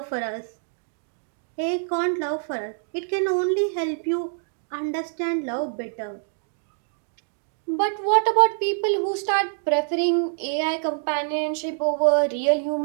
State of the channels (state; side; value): silent; left; digital silence